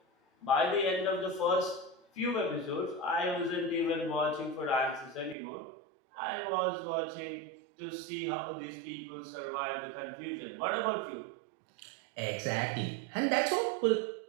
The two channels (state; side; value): drops out; left; at 5.4 s